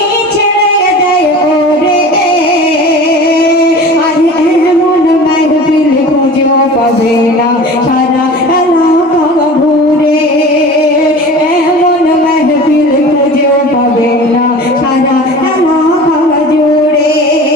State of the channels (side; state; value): both; normal; correlation 0.38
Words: ছেড়ে দেয় ওরে। আর এমন মাহফিল খুঁজেও পাবে না সারা এলাকা ঘুরে। এমন মাহফিল খুঁজেও পাবে না সারা এলাকা জুড়ে।